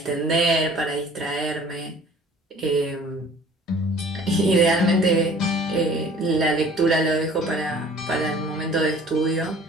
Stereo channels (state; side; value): normal; both; correlation 0.50